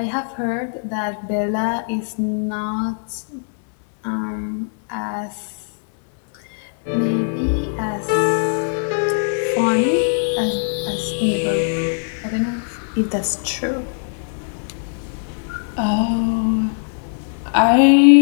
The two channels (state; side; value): silent; right; digital silence